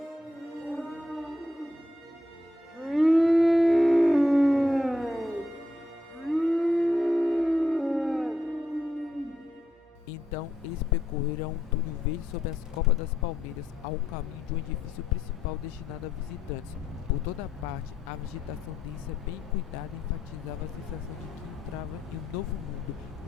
Então, eles percorreram um túnel verde sobre as copas das palmeiras ao caminho de um edifício principal destinado a visitantes. Por toda parte, a vegetação densa, bem cuidada, enfatizava a sensação de que entrava em um novo mundo,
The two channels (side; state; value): both; normal; correlation 0.79